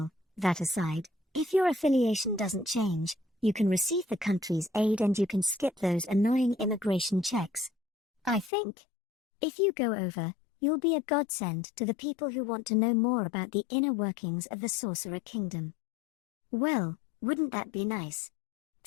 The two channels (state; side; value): drops out; right; at 8.5 s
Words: that aside, if your affiliation doesn't change, you can receive the country's aid and you can skip those annoying immigration checks. I think. If you go over, you'll be a godsend to the people who want to know more about the inner workings of the Sorcerer Kingdom. Well, wouldn't that be nice?